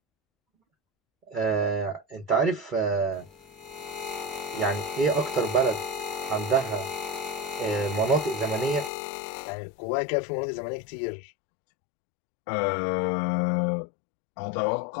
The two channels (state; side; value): drops out; right; at 8.9 s